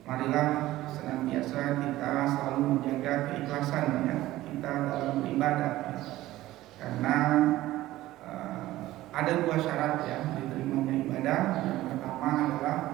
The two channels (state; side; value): quieter; left; 16.0 dB